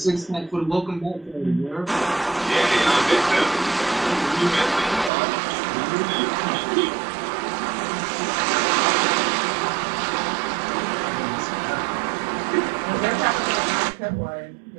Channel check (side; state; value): left; drops out; at 5.1 s